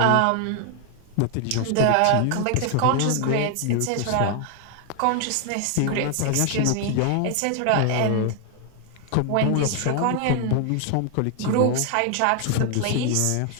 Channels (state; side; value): different; both; correlation 0.00